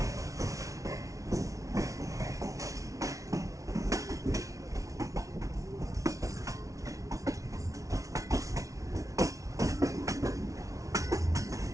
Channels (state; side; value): late; left; 0.16 ms